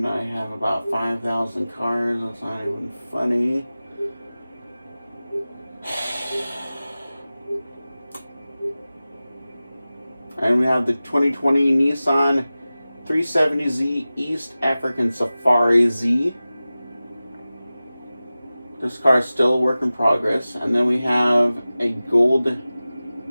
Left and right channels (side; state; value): both; inverted; correlation -0.96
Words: I have about 5,000 cars. That's not even funny. And we have the 2020 Nissan 370Z East African Safari Z. This car is still a work in progress. And then we have a gold,